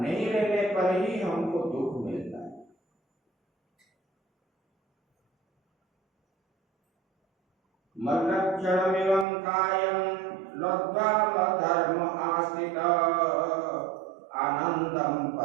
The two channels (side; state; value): left; drops out; at 9.2 s